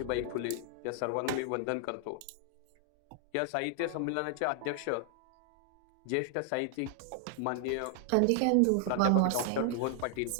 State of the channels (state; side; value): different; both; correlation 0.00